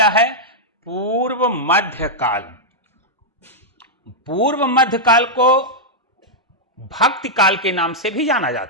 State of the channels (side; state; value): both; normal; correlation -0.05